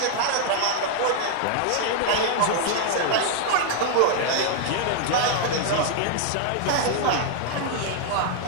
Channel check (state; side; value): different; both; correlation 0.00